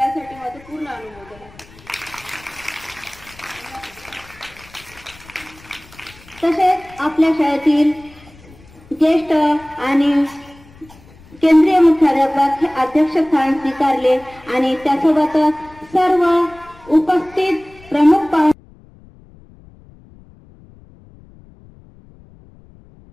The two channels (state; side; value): noise; left; rumble, 24 dB below the sound